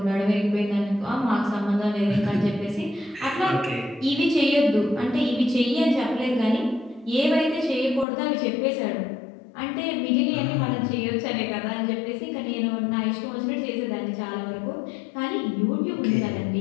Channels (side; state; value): right; drops out; at 8.1 s